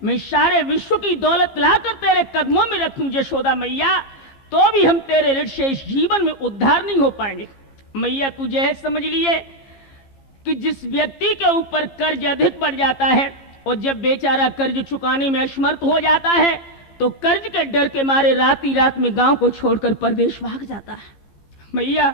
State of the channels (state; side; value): late; right; 15 ms